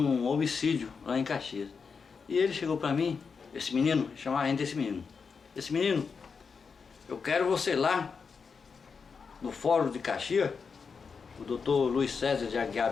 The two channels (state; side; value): quieter; right; 5.5 dB